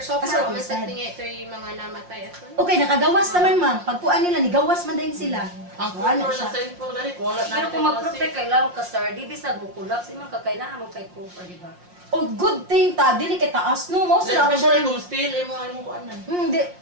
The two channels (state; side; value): late; left; 5.6 ms